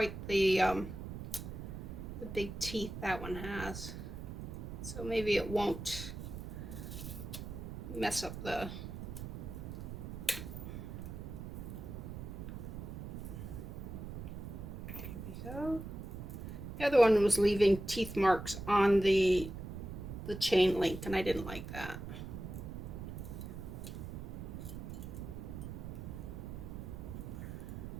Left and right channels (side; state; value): right; noise; rumble, 8 dB below the sound